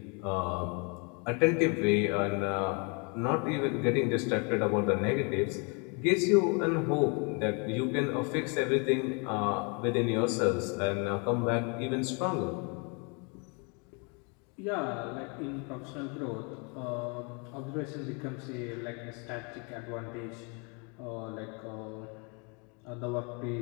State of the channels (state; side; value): quieter; right; 34.0 dB